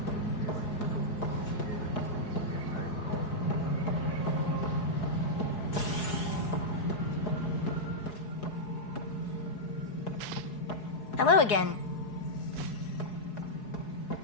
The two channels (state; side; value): late; right; 4.7 ms